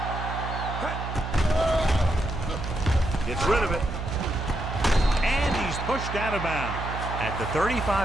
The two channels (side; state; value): right; noise; hum, 6 dB below the sound